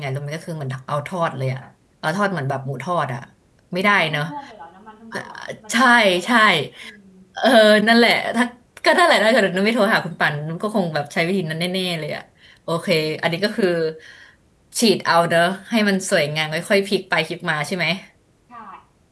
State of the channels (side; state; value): both; identical; correlation 1.00